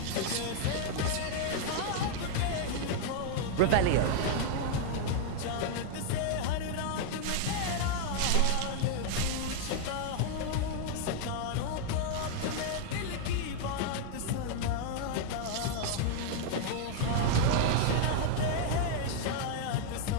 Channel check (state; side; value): different; both; correlation 0.00